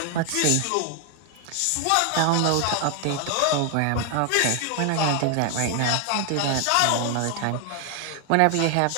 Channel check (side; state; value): both; different; correlation 0.01